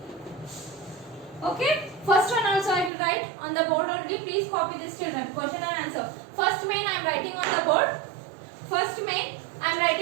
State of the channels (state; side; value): drops out; left; at 2.9 s